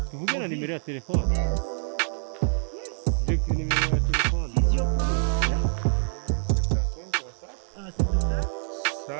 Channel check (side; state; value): left; silent; digital silence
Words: tuvuge na nimero ya telefone je nimero ya telefone